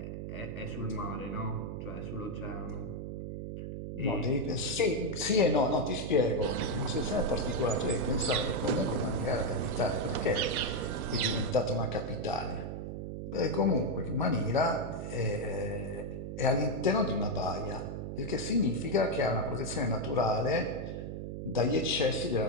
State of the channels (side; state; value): right; noise; hum, 6 dB below the sound